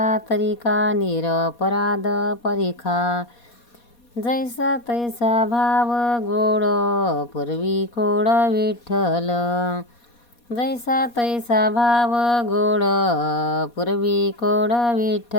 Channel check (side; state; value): right; late; 4.2 ms